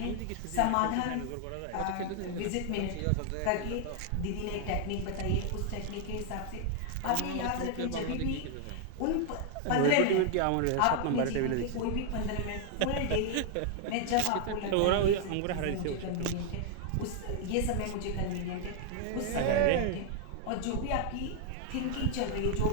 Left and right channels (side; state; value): both; different; correlation 0.00